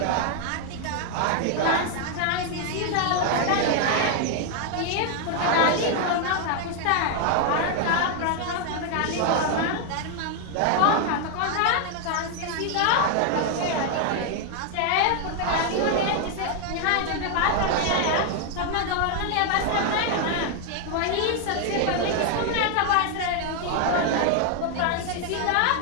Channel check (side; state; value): both; different; correlation 0.01